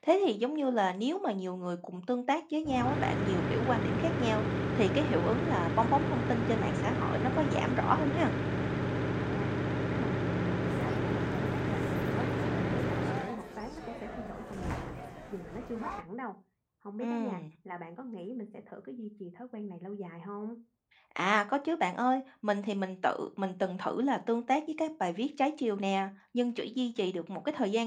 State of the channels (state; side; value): identical; both; correlation 1.00